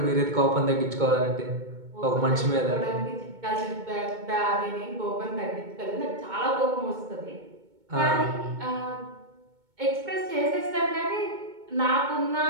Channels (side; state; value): left; late; 2.2 ms